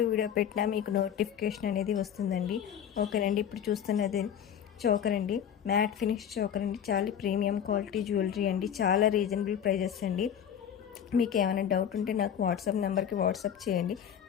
వీడియో పెట్టినా మీకు నోటిఫికేషన్ అనేది వస్తుందండి. ఓకేనండి. ఇప్పుడు చూస్తున్నది చోకర్ అండి, మ్యాట్ ఫినిష్ చోకర్ అండి. చాలా ప్రీమియం క్వాలిటీ జ్యువెలరీ అండి. చాలా రీజనబుల్ ప్రైజెస్ అండి. మీకు ఏమైనా డౌట్ ఉంటే నాకు వాట్సాప్ నెంబర్కి వాట్సాప్ చేయండి.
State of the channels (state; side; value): quieter; right; 9.0 dB